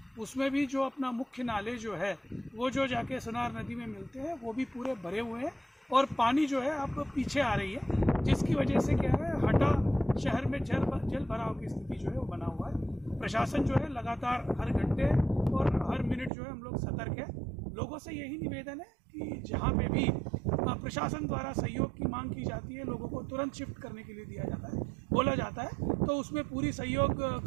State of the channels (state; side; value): drops out; left; at 16.3 s